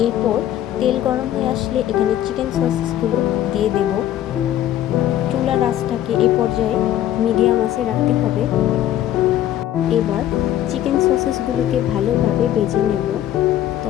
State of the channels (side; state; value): right; quieter; 12.1 dB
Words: এরপর তেল গরম হয়ে আসলে এখানে চিকেন সসেসগুলো দিয়ে দেব। চুলার আঁচটাকে এই পর্যায়ে মিডিয়াম আঁচে রাখতে হবে। এবার চিকেন সসেসগুলোকে ভালোভাবে ভেজে নেব,